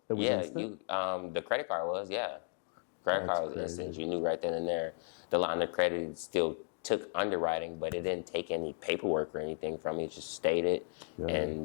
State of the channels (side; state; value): right; silent; 55 dB below the other